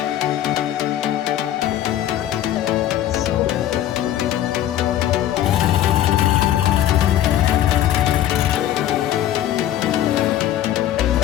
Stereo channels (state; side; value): quieter; right; 12.1 dB